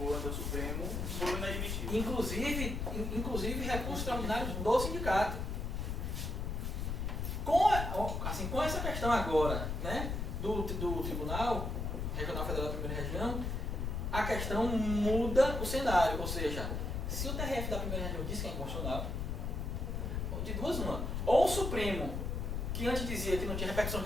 do Supremo foram inadmitidos. Inclusive recursos extraordinários do sindicato. Com essa questão agora, né, do Tribunal Regional Federal da Primeira Região, a questão muda o cenário. Ou seja, se o TRF da primeira reunião diz que é inconstitucional, de duas uma, ou o Supremo, que antes dizia que não tinha repercussão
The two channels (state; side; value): noise; left; rumble, 2 dB below the sound